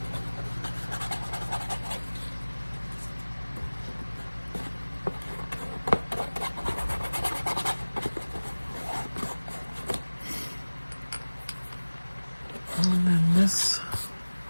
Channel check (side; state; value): both; inverted; correlation -1.00